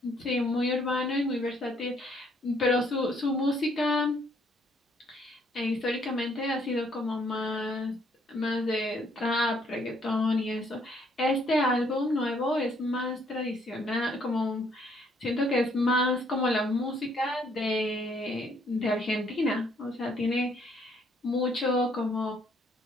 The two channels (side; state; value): both; normal; correlation 0.67